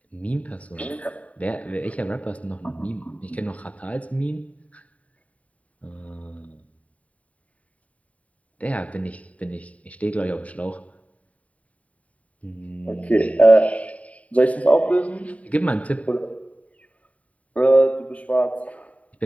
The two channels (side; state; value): right; late; 0.068 ms